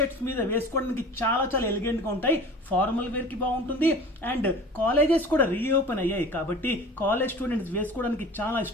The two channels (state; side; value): normal; both; correlation 0.40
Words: మీద వేసుకోవడానికి చాలా ఎలిగెంట్ గా ఉంటాయి. ఫార్మల్ వేర్ కి బాగుంటుంది. అండ్ కాలేజెస్ కూడా రీఓపెన్ అయ్యాయి కాబట్టి కాలేజ్ స్టూడెంట్స్ వేసుకోవడానికి చాలా